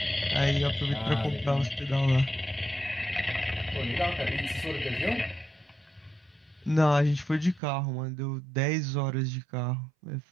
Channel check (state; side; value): drops out; left; at 7.6 s